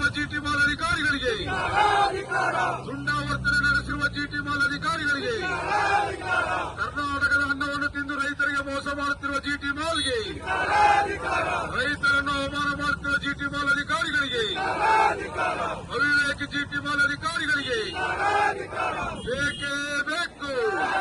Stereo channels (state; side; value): identical; both; correlation 1.00